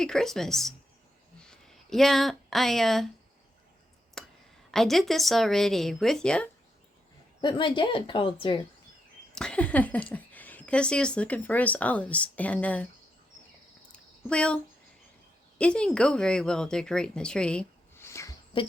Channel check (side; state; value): both; normal; correlation 0.83